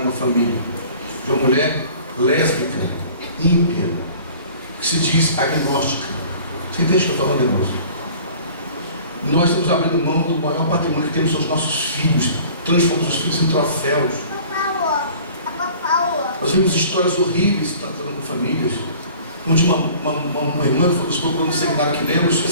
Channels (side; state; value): both; inverted; correlation -0.47